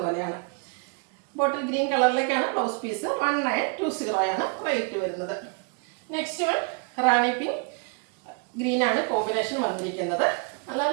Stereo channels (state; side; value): quieter; left; 36.3 dB